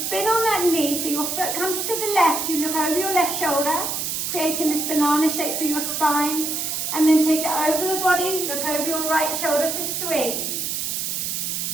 on that knee so your foot comes to the left. You look over your left shoulder, creating this banana shape for your spine. And then take it over the body, look over your right shoulder for 3.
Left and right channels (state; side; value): noise; right; hiss, 2 dB below the sound